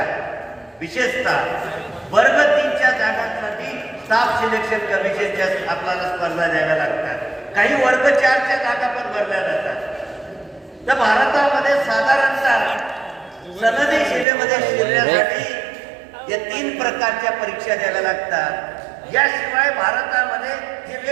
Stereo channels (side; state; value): left; drops out; at 14.2 s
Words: विशेषतः वर्ग 3च्या जागांसाठी स्टाफ सिलेक्शन कमिशनच्या आपल्याला स्पर्धा द्याव्या लागतात. काही वर्ग 4च्या जागा पण भरल्या जातात. तर भारतामध्ये साधारणतः सनदी सेवेमध्ये शिरण्यासाठी या 3 प्रकारच्या परीक्षा द्याव्या लागतात. याशिवाय भारतामध्ये जे